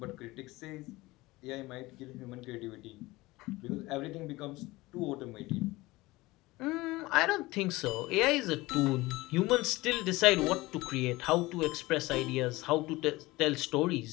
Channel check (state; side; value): quieter; right; 20.3 dB